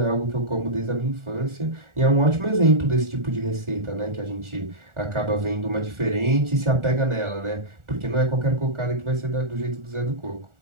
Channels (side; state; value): left; late; 1.4 ms